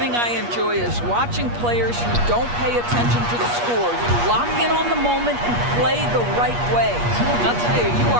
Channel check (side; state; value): left; late; 8.4 ms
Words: I enjoy is watching players who don't pay attention to the score. You lock in on the moment and play the right way. I'll tell you, you